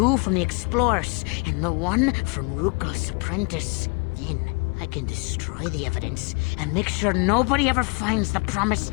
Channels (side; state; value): right; quieter; 31.7 dB